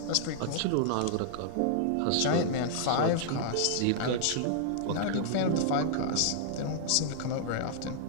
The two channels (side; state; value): both; different; correlation -0.01